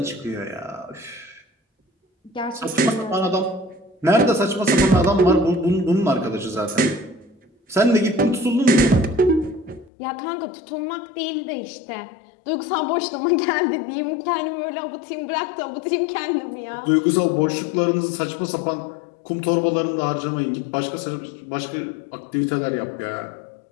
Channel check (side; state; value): right; drops out; at 9.9 s